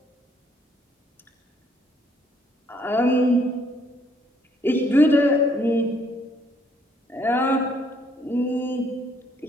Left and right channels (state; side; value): normal; both; correlation 0.67